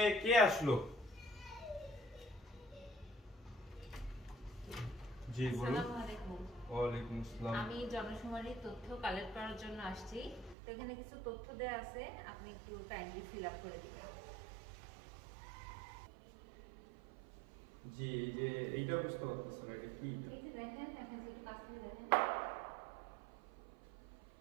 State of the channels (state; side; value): drops out; left; at 10.6 s